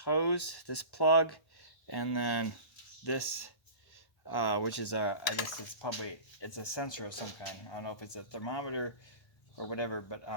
hose, this plug, and then this, which is I guess it's a sensor of some kind. I don't know if it's a thermometer or whatever, but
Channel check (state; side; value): late; right; 1.1 ms